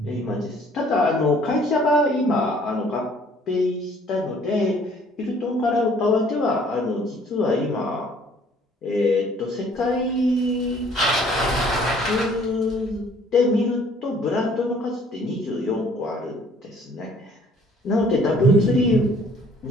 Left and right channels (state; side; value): normal; both; correlation 0.57